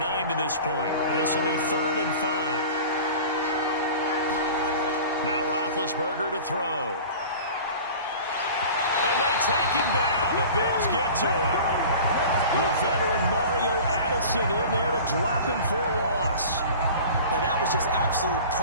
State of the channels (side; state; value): both; inverted; correlation -0.39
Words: to this point. This will be 3rd and 5. Now Roethlisberger to throw. And they take him down. The Bills get to him. The veteran Mario Addison in there to drop him for a loss. Now that was just absolute